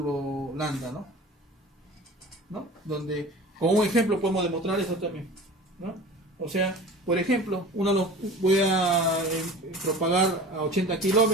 lambda, ¿no? Donde, con un ejemplo podemos demostrar eso también, ¿no? O sea, por ejemplo, voy a propagar a 80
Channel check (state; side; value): normal; both; correlation 0.39